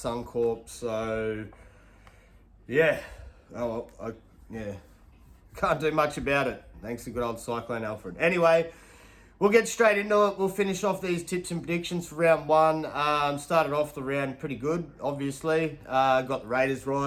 so yeah, can't do much about it. Thanks to good old Cyclone Alfred. Anyway, we'll get straight into it. We'll finish off these tips and predictions for round 1. Started off the round pretty good, obviously. Got the Raiders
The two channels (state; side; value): identical; both; correlation 1.00